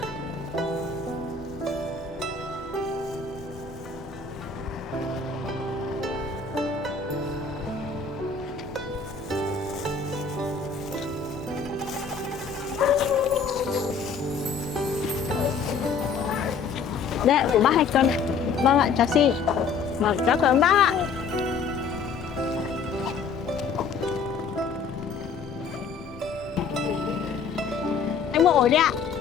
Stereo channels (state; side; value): quieter; right; 5.4 dB